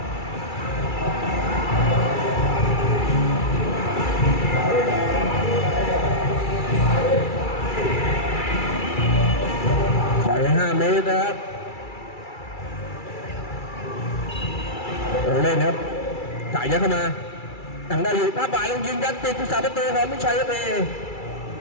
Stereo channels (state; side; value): late; right; 2.3 ms